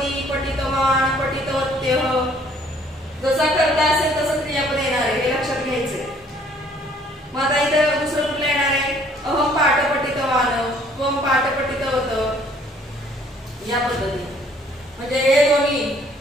पठितवान, पठितवत्यः जसा कर्ता असेल तसं क्रियापद येणार आहे, हे लक्षात घ्यायचंय. मग आता इथं दुसरं कुठलं येणार आहे? अहम पाठ पठितवान, त्वम पाठ पठितवत या पद्धतीने. म्हणजे हे दोन्ही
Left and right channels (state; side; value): normal; both; correlation 0.60